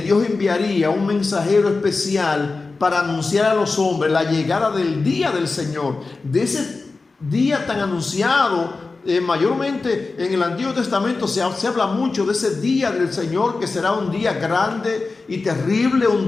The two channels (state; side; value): quieter; right; 3.9 dB